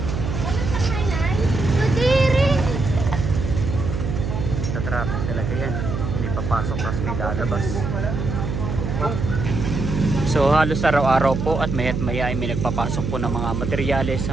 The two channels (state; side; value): noise; right; hum, 3 dB below the sound